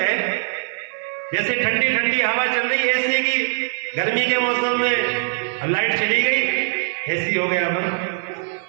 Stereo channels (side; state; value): left; silent; 57 dB below the other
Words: जैसे ठंडी ठंडी हवा चल रही है एसी की, गर्मी के मौसम में, अब लाइट चली गई, एसी हो गया बंद।